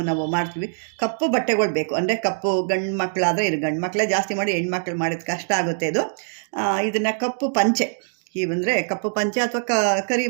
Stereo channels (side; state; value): left; silent; 64 dB below the other